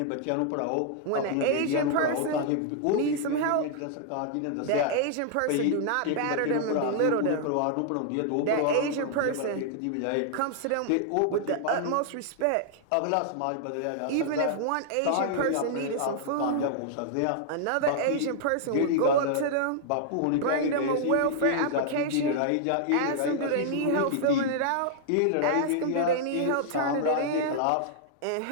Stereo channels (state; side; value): different; both; correlation -0.01